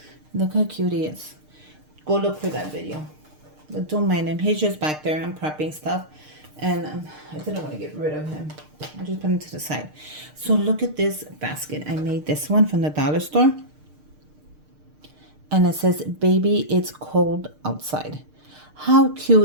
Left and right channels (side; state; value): left; late; 6.6 ms